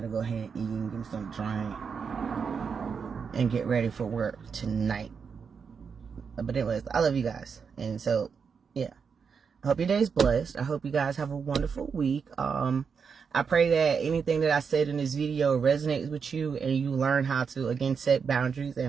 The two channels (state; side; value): quieter; left; 6.1 dB